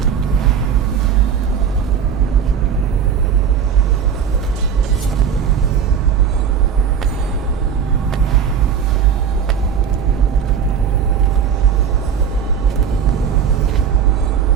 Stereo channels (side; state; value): left; quieter; 7.5 dB